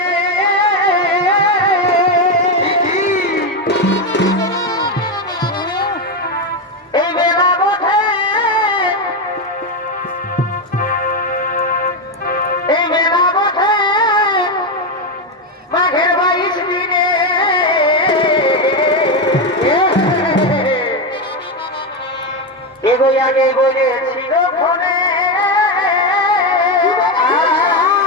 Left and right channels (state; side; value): normal; both; correlation 0.10